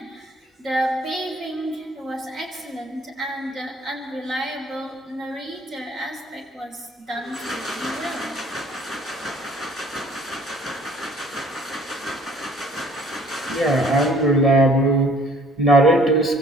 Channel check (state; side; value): normal; both; correlation 0.56